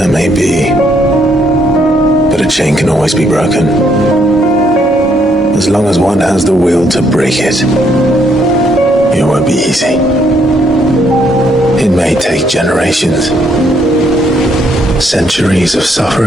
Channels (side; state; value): both; normal; correlation 0.71